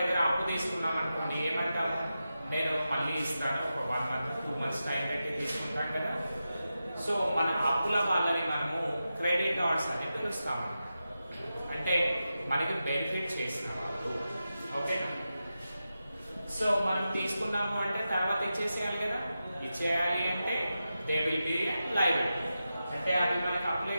దగ్గర అప్పు తీసుకున్నాం అనుకోండి, ఏమంటాము, నేను మళ్ళీ ఇస్తాను, ఒక 1 month 2 months టైం పెట్టి తీసుకుంటాం కదా. సో మన అప్పుల వాళ్ళని మనము క్రెడిటార్స్ అని పిలుస్తాము. అంటే మనకి బెనిఫిట్ చేసిన వాళ్ళు. ఓకేనా? సో మనం తీసుకున్నాము అంటే తర్వాత ఇచ్చేసేయాలి కదా. ఇచ్చేయాలి అంటే దే విల్ బి లయబిలిటీ. అంటే అది మనకి అప్లై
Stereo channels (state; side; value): inverted; both; correlation -0.91